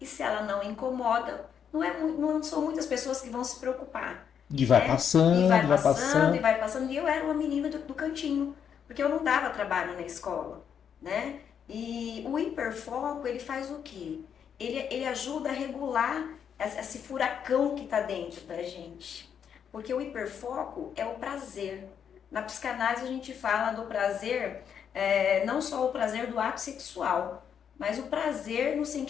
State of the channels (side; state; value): right; quieter; 7.9 dB